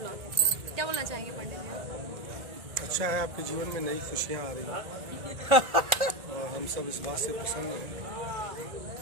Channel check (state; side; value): late; left; 1.4 ms